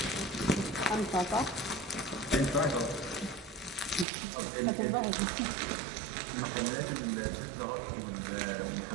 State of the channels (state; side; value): drops out; left; at 4.0 s